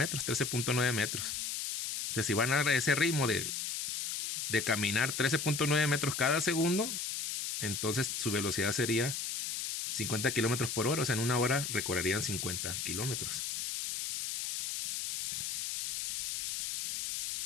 13.9 metros. Entonces, si van a ese ritmo de caminar 13.9 metros cada segundo, entonces su velocidad sería 50 kilómetros por hora. O sea, en una hora recorrerían 50 kilómetros.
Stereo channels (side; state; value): left; noise; hiss, 2 dB below the sound